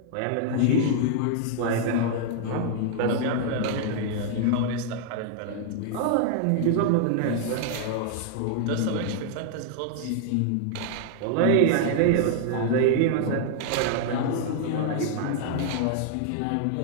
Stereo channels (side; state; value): both; different; correlation -0.01